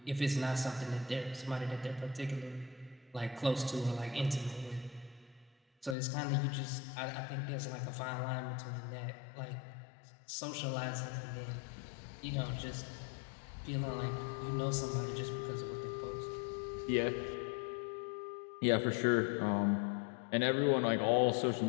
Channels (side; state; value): right; drops out; at 6.0 s